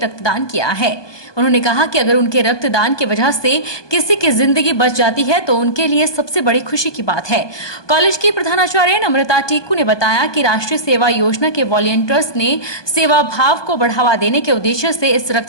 किया है। उन्होंने कहा कि अगर उनके रक्तदान की वजह से किसी की जिंदगी बच जाती है तो उनके लिए सबसे बड़ी खुशी की बात है। कॉलेज की प्रधानाचार्य नम्रता टीकू ने बताया कि राष्ट्रीय सेवा योजना के वॉलंटियर्स ने सेवा भाव को बढ़ावा देने के उद्देश्य से इस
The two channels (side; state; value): right; late; 1.2 ms